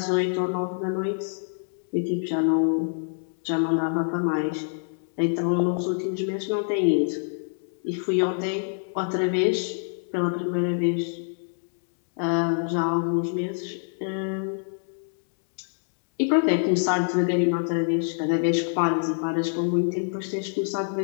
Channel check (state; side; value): silent; right; digital silence